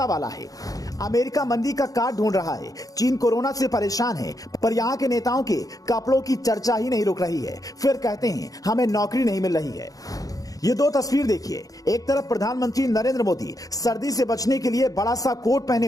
वाला है। अमेरिका मंदी का कार्ड ढूंढ रहा है। चीन कोरोना से परेशान है, पर यहाँ के नेताओं के कपड़ों की चर्चा ही नहीं रुक रही है। फिर कहते हैं हमें नौकरी नहीं मिल रही है। ये दो तस्वीर देखिए। एक तरफ प्रधानमंत्री नरेंद्र मोदी सर्दी से बचने के लिए बड़ा सा कोट पहने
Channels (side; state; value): right; late; 0.17 ms